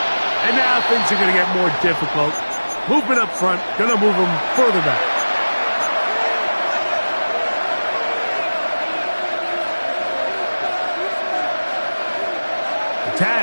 Now things are going to get more difficult. Movement up front, going to move them further back. The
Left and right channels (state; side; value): inverted; both; correlation -1.00